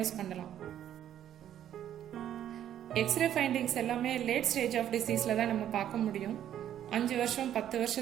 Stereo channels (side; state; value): left; quieter; 10.8 dB